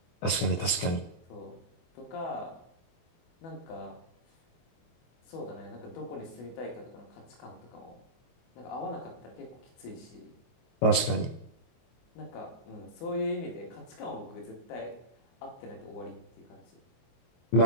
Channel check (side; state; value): right; late; 24 ms